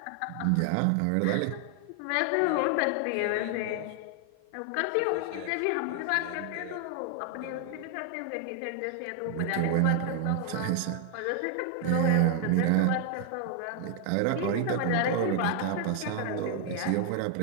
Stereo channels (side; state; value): both; different; correlation 0.00